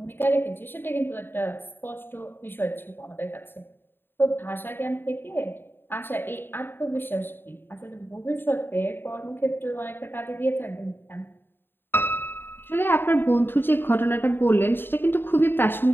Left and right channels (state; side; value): late; right; 0.10 ms